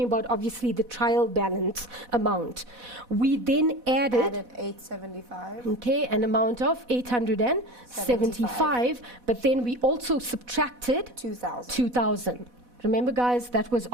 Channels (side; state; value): left; late; 4.1 ms